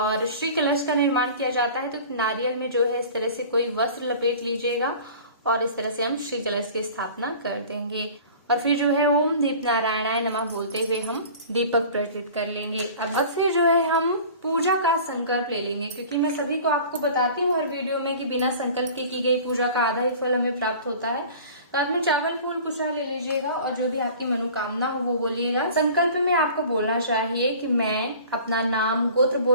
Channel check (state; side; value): inverted; both; correlation -0.43